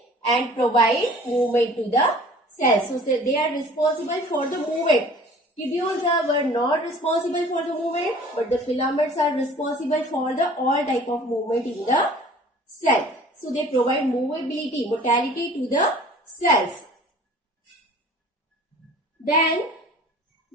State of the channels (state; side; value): normal; both; correlation 0.48